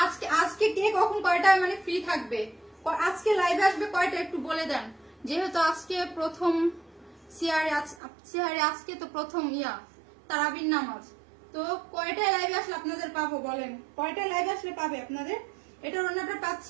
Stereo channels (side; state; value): left; drops out; at 8.0 s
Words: আজকে কে কখন কয়টায় মানে ফ্রি থাকবে, আজকে লাইভে আসবে কয়টা একটু বলে দেন। যেহেতু আজকে প্রথম সিহারে আজকে তো প্রথম তারাবির নামাজ, তো কয়টায় লাইভে আসলে আপনাদের পাবো বলেন, কয়টায় লাইভে আসলে পাবে আপনাদের? এটার ওনাটা